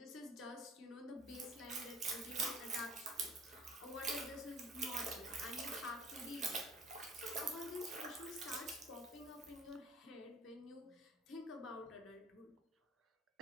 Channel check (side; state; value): both; normal; correlation 0.48